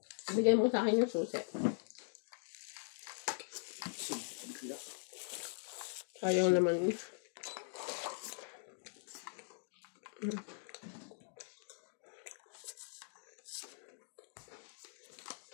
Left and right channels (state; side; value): silent; right; digital silence